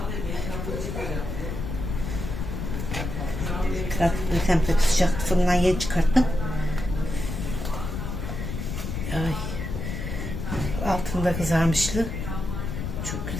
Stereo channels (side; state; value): left; noise; rumble, 4 dB below the sound